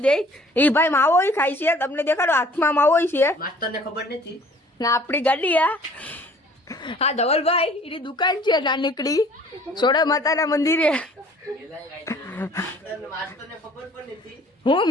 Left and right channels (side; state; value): both; normal; correlation 0.54